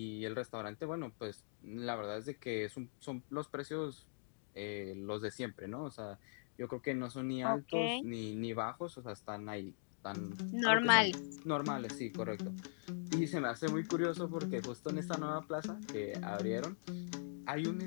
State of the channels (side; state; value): right; silent; digital silence